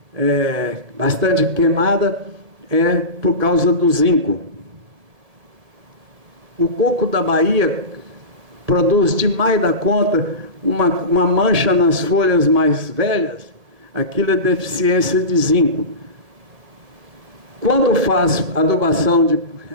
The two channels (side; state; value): left; late; 1.8 ms